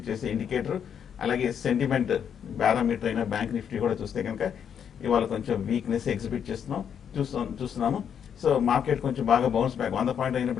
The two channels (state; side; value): quieter; right; 8.1 dB